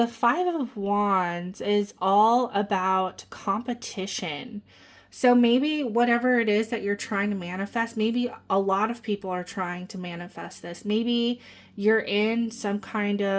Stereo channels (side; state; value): both; identical; correlation 1.00